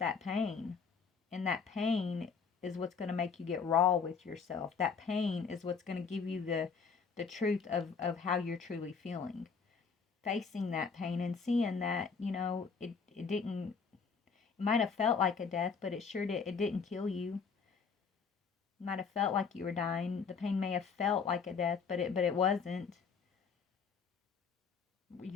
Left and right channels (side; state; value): right; quieter; 5.6 dB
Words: pain. And that pain is what's going to make you get raw with yourself. That pain is what's going to give you the truth of how you're truly feeling. Facing that pain and seeing that, you know, it didn't, it might have felt like a death, but it sure did, it didn't kill you. It might have felt like you were dying. The pain may have felt like a death, but it wasn't.